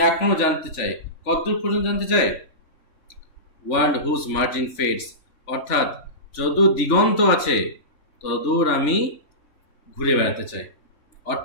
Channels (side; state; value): right; late; 3.4 ms